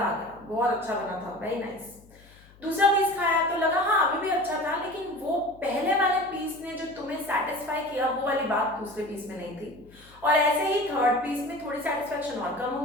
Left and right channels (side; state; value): left; noise; hum, 25 dB below the sound